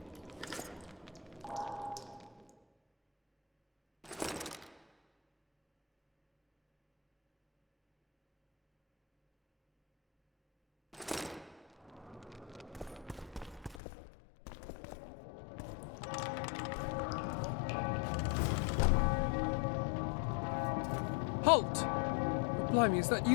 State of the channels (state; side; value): drops out; right; at 13.8 s